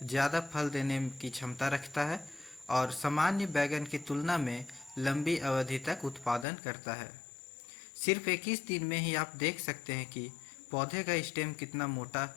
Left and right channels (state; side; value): drops out; right; at 6.5 s